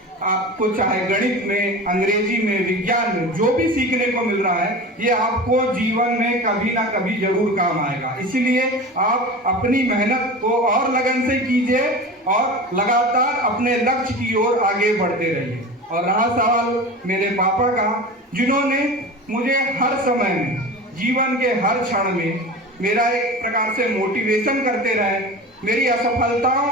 आपको चाहे गणित में, अंग्रेजी में, विज्ञान में जो भी सीखने को मिल रहा है ये आपको जीवन में कभी ना कभी जरूर काम आएगा। इसीलिए आप अपनी मेहनत को और लगन से कीजिए और लगातार अपने लक्ष्य की ओर आगे बढ़ते रहिए। और रहा सवाल मेरे पापा का, जिन्होंने मुझे हर समय में, जीवन के हर क्षण में मेरा एक प्रकार से मोटिवेशन करते रहे, मेरी असफलताओं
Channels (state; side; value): normal; both; correlation 0.32